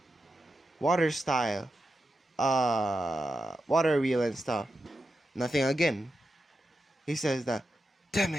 Water Style, Water Wheel and stuff. Nothing again. He says that, damn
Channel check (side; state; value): both; normal; correlation 0.89